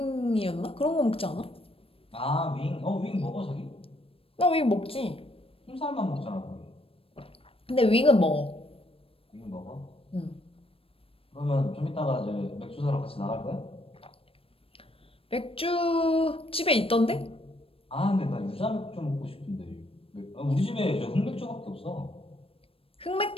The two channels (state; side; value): late; right; 0.27 ms